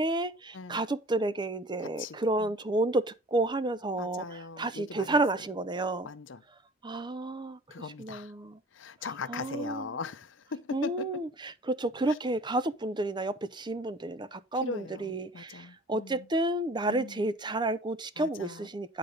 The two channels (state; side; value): normal; both; correlation 0.45